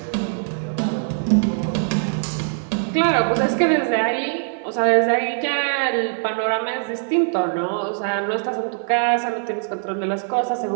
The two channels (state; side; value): silent; left; digital silence